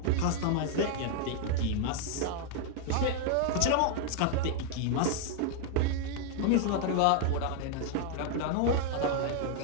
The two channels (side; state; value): both; different; correlation 0.00